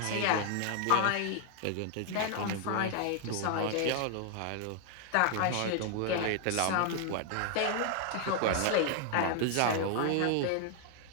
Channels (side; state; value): both; different; correlation 0.00